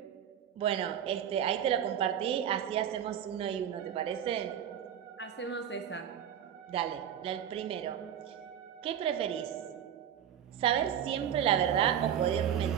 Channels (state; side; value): quieter; left; 9.4 dB